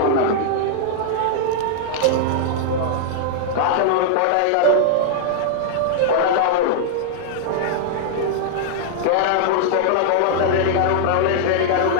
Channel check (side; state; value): both; different; correlation -0.01